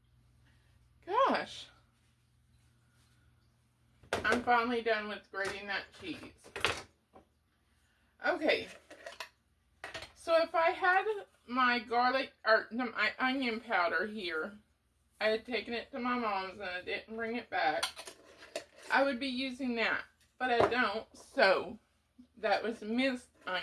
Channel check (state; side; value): identical; both; correlation 1.00